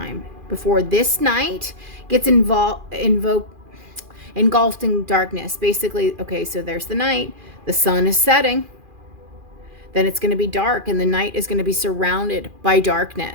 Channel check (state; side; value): late; left; 2.4 ms